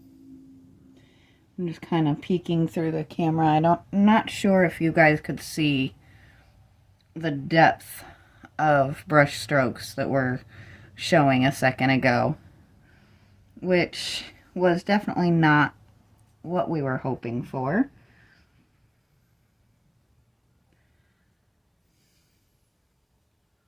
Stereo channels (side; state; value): both; identical; correlation 1.00